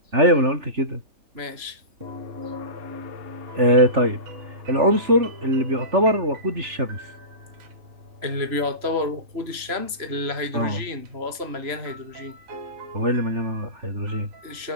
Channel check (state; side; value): late; left; 3.0 ms